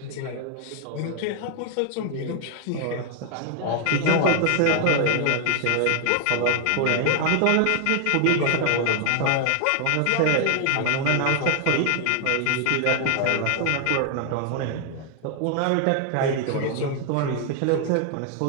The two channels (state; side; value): different; both; correlation 0.00